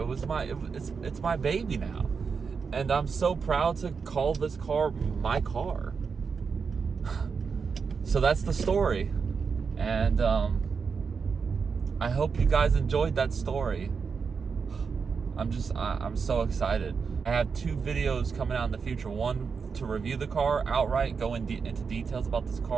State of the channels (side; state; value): left; quieter; 5.6 dB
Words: my baby now, and I'm so proud to call this car my car. So that's the story, and I hope you guys enjoyed that story. I'm so excited. I have 2 videos coming out in the future. One to review the car outright, go into details about this